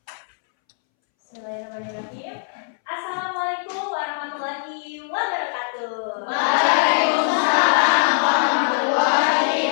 Bismillahirrahmanirrahim. Assalamualaikum warahmatullahi wabarakatuh. Waalaikumsalam warahmatullahi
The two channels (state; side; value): silent; right; 64 dB below the other